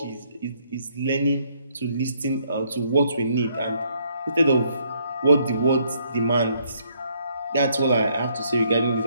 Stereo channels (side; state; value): both; inverted; correlation -0.69